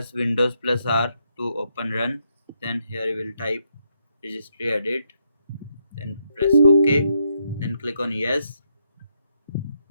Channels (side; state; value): both; inverted; correlation -0.78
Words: Windows plus R to open run. Then here you will type registry edit. Then press OK. Then click on yes.